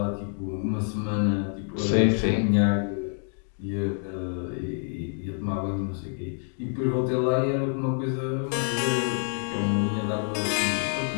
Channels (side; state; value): right; silent; 60 dB below the other